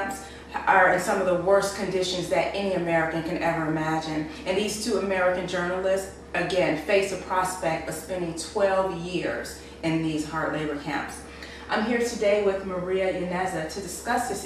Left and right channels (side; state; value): both; identical; correlation 1.00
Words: are in some of the worst conditions that any American can ever imagine. And these two American journalists, again, face a prospect of spending 12 years in these hard labor camps. I'm here today with Maria Yaneza to discuss